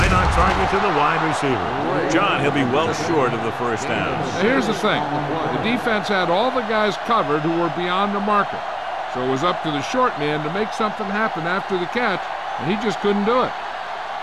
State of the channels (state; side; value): identical; both; correlation 1.00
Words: on target to the wide receiver. John, he'll be well short of the first down. Now here's the thing. The defense had all the guys covered who were beyond the marker. So it was up to the short man to make something happen after the catch, and he just couldn't do it.